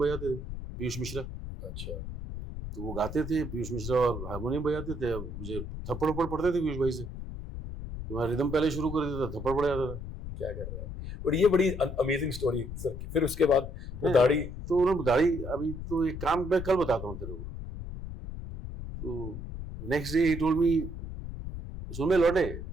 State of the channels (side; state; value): left; noise; rumble, 8 dB below the sound